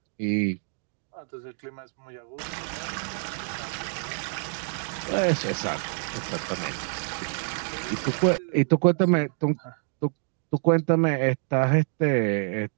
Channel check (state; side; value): silent; left; 60 dB below the other